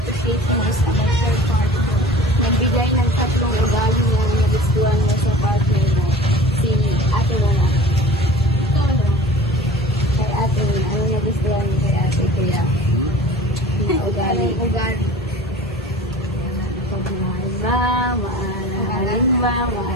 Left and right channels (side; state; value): both; normal; correlation 0.42